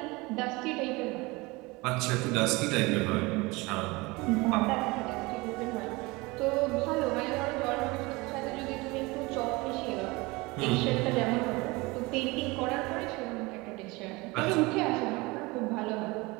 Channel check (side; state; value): left; quieter; 23.7 dB